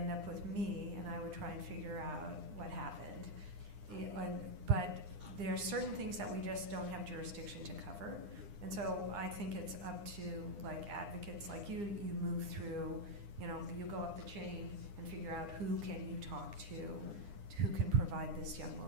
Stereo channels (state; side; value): late; left; 9.9 ms